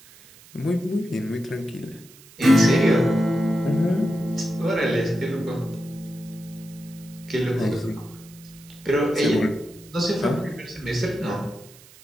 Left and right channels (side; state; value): right; noise; hiss, 23 dB below the sound